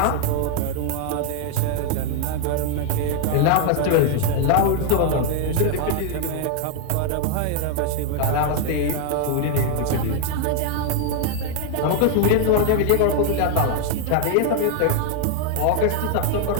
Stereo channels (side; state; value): both; different; correlation 0.00